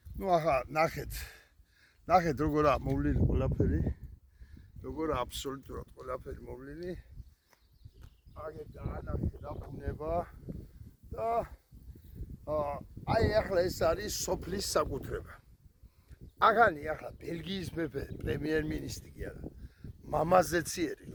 ახლა ნახეთ როგორა მოვლილი ყველაფერი. როგორა აბსოლუტურად ყველაფერი მოვლილი. აგერ დაანახე რა ბუნება და აი ახლა ეს არის სოფლის საკუთრება. აღანი ახლა ბელგიის მეფე პრემიერ-მინისტრი კი არა. მამაზეციერი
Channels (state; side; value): identical; both; correlation 1.00